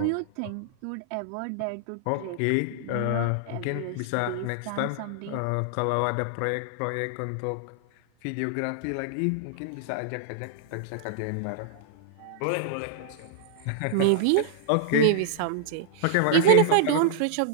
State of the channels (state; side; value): different; both; correlation -0.01